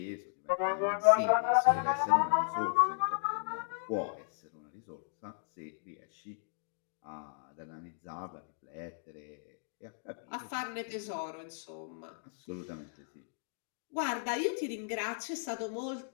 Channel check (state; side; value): silent; right; digital silence